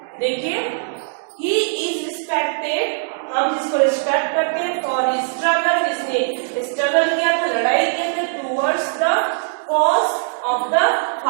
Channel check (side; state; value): left; silent; digital silence